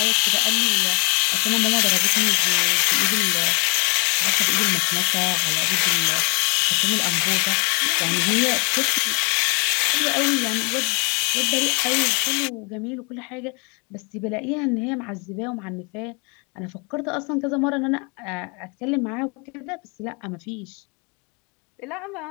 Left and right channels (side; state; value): right; quieter; 36.1 dB